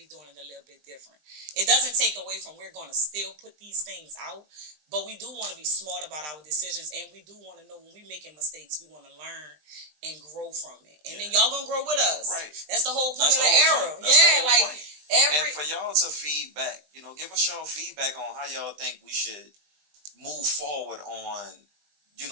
doing it a little bit different. It doesn't take away from we're gonna still put these things out, but we do want to be smart about our decisions, and we do want to know when we making mistakes, we want to learn and grow from it, and then y'all gonna grow with us. Right. That's the whole point of the era. Point. And for y'all to feedback, give us y'all feedback on how y'all think we should move forward on,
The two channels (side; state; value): left; late; 20 ms